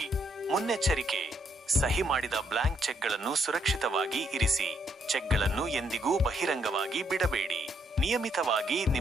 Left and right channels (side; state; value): both; normal; correlation 0.73